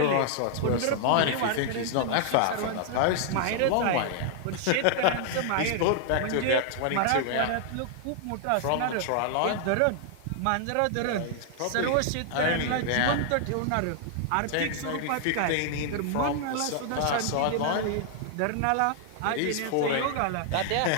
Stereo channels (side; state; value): both; different; correlation 0.00